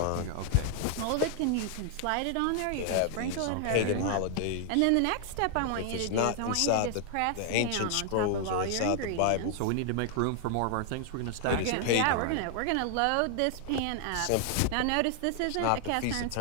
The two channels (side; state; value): both; different; correlation 0.00